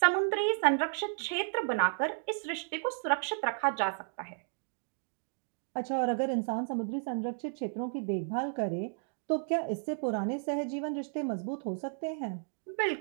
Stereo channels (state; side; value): silent; left; digital silence